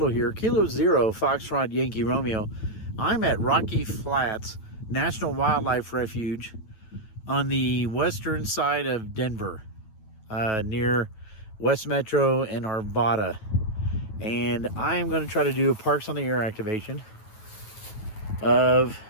here. Kilo Zero, Foxtrot Yankee Romeo. I'm at Rocky Flats National Wildlife Refuge on the western side of Denver, near West Metro and Arvada. And I'm going to try to do a Parks on the Air activation of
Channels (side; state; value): right; late; 9.2 ms